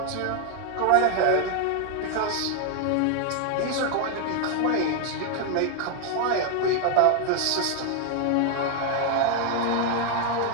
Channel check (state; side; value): different; both; correlation 0.00